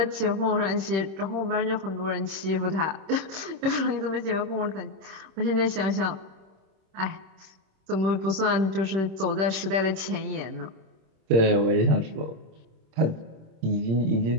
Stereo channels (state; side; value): late; left; 26 ms